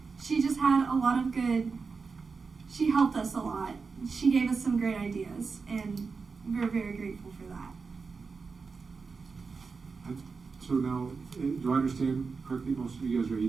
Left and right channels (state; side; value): quieter; left; 4.8 dB